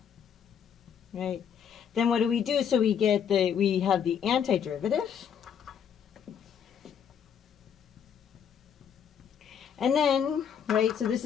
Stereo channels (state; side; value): quieter; right; 8.0 dB